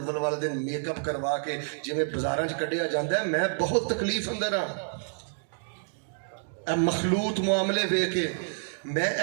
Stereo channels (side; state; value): left; silent; digital silence